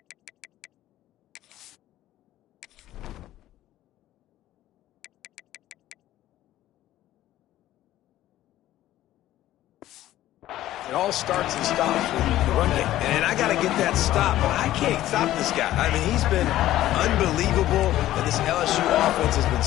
it all starts and stops with the run game. And I got to get that stop, but I can't stop this guy. I mean, he's been unbelievable, and this LSU offense has been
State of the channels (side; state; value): right; quieter; 14.2 dB